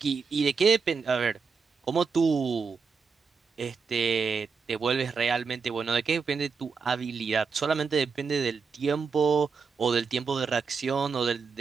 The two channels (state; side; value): quieter; left; 5.3 dB